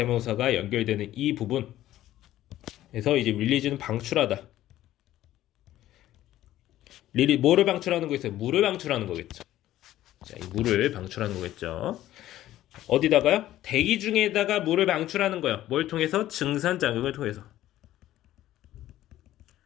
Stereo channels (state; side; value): quieter; right; 13.9 dB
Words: 연결되는 이 부분. 그래서 이제 릴리즈는 방출하다. 뭐를 방출하는 거겠어요? 물을 방출하는 거겠죠. 자, 이 물을 방출하는 거겠죠. 어디다가요? 대기 중에다가 물을 방출하는 거예요. 뭘 통해서? 증산작용을 통해서.